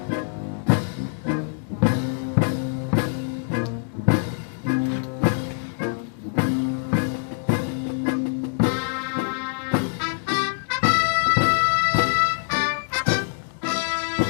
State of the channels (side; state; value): right; silent; digital silence